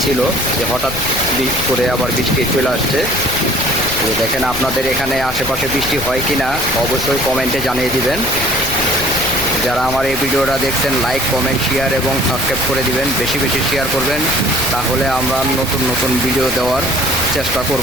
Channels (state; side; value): noise; left; rumble, 11 dB below the sound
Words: ছিল, যে হঠাৎ করে আবার বৃষ্টি চলে আসছে। তো দেখেন, আপনাদের এখানে আশেপাশে বৃষ্টি হয় কি না অবশ্যই কমেন্টে জানিয়ে দিবেন। যারা আমার এই ভিডিওটা দেখছেন, লাইক, কমেন্ট, শেয়ার এবং সাবস্ক্রাইব করে দিবেন। বেশি বেশি শেয়ার করবেন, তাহলে আমরা নতুন নতুন ভিডিও দেওয়ার চেষ্টা